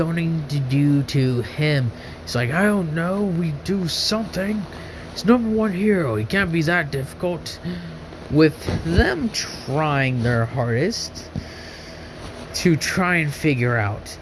to do to him? He's like, I don't know, we do something. He's #1 hero, he can't be that difficult. With them trying their hardest to try and figure out,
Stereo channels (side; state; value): both; identical; correlation 1.00